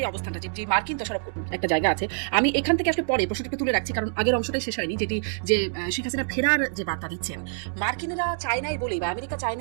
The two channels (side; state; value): left; silent; digital silence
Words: অবস্থানটা, যে মার্কিন দোষারোপ একটা জায়গা আছে, আমি এখান থেকে আসলে পরে প্রশ্নটাকে তুলে রাখছি, কারণ আগের অংশটাই শেষ হয়নি, যেটি যে শেখ হাসিনা ফেরার যে বার্তা দিচ্ছেন, মার্কিনেরা চায় নাই বলেই বা আমেরিকা চায়